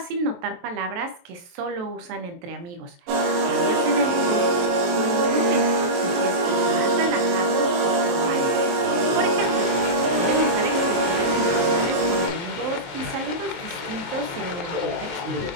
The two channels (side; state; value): left; late; 23 ms